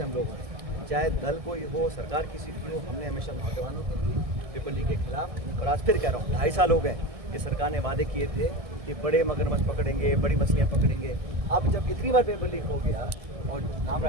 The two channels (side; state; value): left; late; 1.6 ms